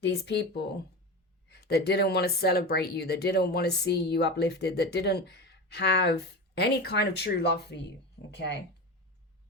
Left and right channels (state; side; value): normal; both; correlation 0.25